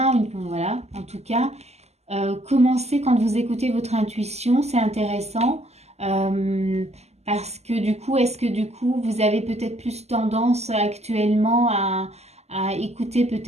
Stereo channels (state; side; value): late; left; 0.31 ms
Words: voilà, en tout cas. Commencez quand vous écoutez votre intuition, c'est intéressant. euh, Parce que du coup, est-ce que du coup, vous avez peut-être plus tendance actuellement à écouter